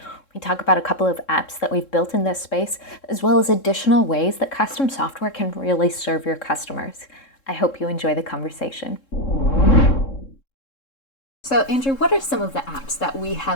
We talk about a couple of apps that we've built in this space, as well as additional ways that custom software can really serve your customers. I hope you enjoy the conversation. So, Andrew, what are some of the apps that we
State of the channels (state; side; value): late; right; 3.7 ms